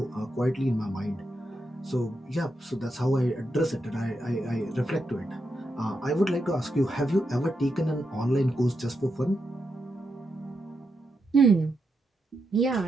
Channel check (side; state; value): both; normal; correlation 0.84